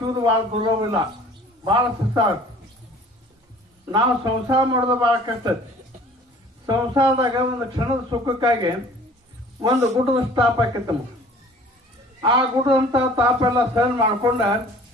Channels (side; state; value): both; normal; correlation 0.50